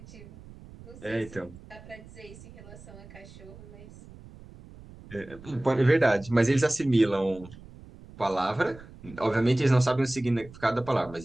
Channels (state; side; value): noise; right; rumble, 19 dB below the sound